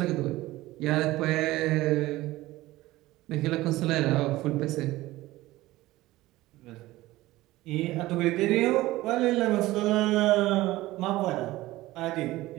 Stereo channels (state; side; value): quieter; left; 17.7 dB